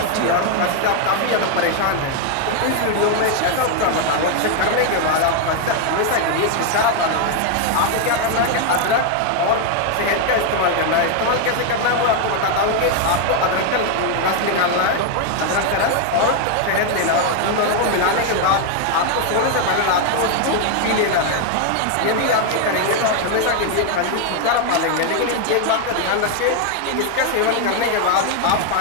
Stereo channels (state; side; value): different; both; correlation 0.00